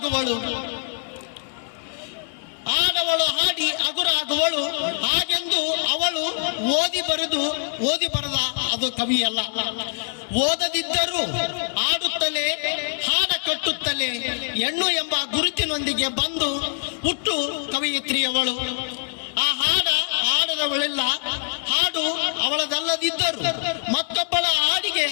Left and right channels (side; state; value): right; silent; digital silence